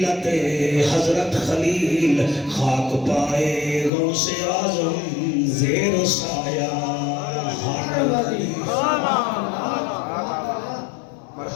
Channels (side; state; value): right; drops out; at 3.9 s